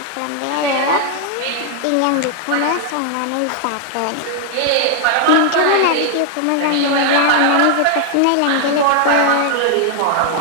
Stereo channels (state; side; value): different; both; correlation 0.00